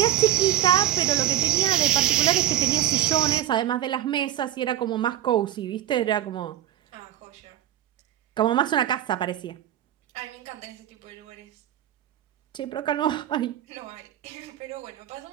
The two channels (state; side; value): quieter; left; 12.5 dB